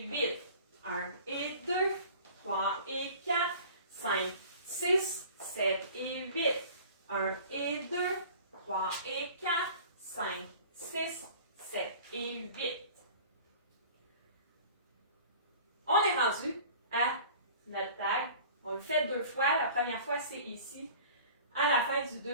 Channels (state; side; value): inverted; both; correlation -0.44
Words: 8, 1 et 2, 3 et 4, 5, 6, 7 et 8, 1 et 2, 3 et 4, 5, 6, 7 et 8. On est rendu à notre tag. On le fait 2 fois. La première fois, c'est ici, à la fin du